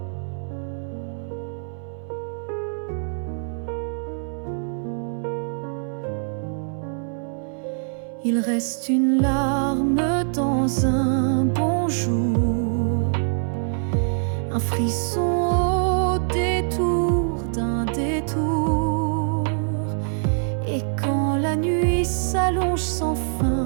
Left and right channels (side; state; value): left; silent; 63 dB below the other